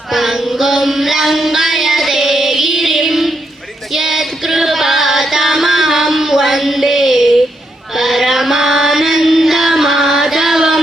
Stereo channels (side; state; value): both; normal; correlation 0.80